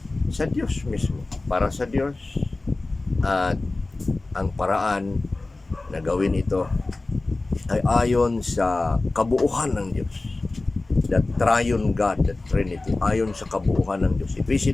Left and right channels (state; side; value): quieter; right; 3.2 dB